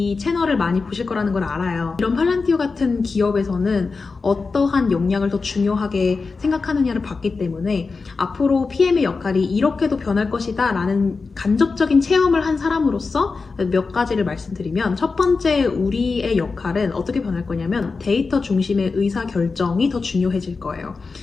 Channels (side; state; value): right; quieter; 4.4 dB